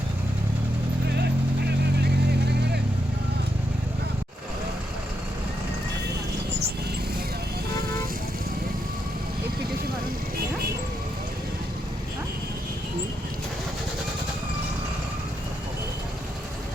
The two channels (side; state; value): both; normal; correlation 0.82